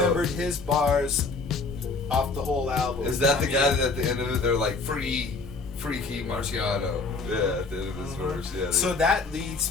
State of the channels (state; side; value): quieter; right; 3.9 dB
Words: his bars off the whole album. Is that the guy that at the end of it they're like Freaky Marciano? Yeah, at the end of his verse. Yeah. So that leads.